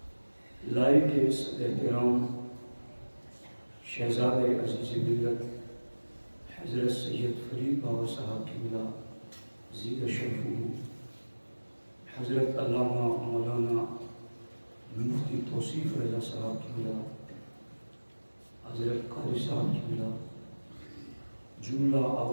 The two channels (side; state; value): both; inverted; correlation -1.00